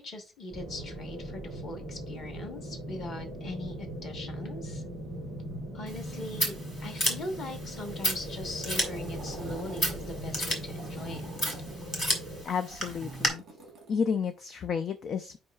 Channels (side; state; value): both; normal; correlation 0.68